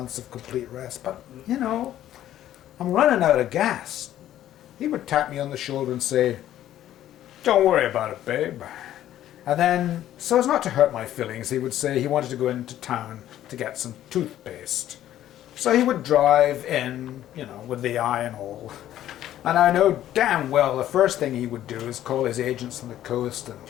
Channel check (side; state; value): right; quieter; 12.4 dB